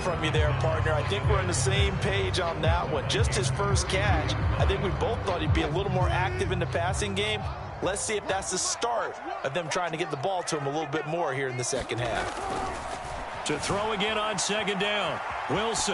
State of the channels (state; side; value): identical; both; correlation 1.00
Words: you there, partner. I think we're on the same page on that one. Just his first catch. I think we both thought he'd be a little more active in the passing game. Let's see if that's the start of them trying to get the ball to him a little bit more here in the second half. To throw again on second down,